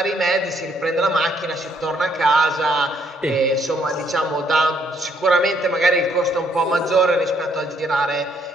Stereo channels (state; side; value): normal; both; correlation 0.69